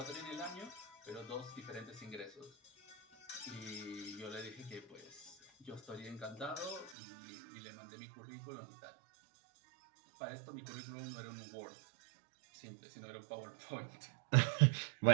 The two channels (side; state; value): left; drops out; at 7.0 s